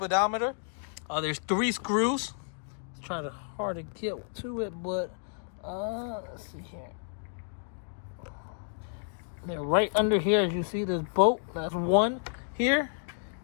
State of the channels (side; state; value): right; silent; digital silence